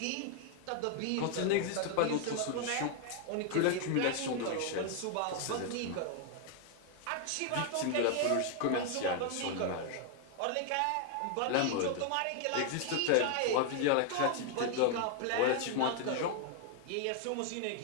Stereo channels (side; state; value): both; different; correlation 0.00